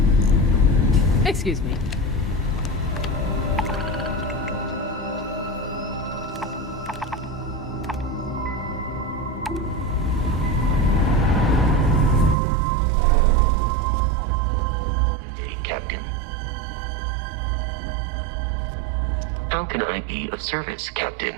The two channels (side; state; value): left; drops out; at 12.4 s